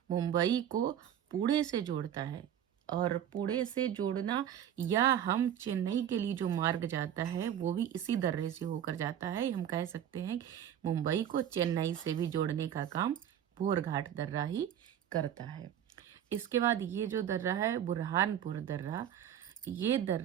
मुंबई को पुणे से जोड़ता है। और पुणे से जोड़ना, या हम चेन्नई के लिए जो मार्ग जाता है वो भी इसी दर्रे से होकर जाता है। हम कह सकते हैं मुंबई को चेन्नई से भी जोड़ने का काम भोरघाट दर्रा ही करता है। इसके बाद ये जो दर्रा है बुरहानपुर दर्रा, ये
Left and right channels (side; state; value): left; quieter; 10.1 dB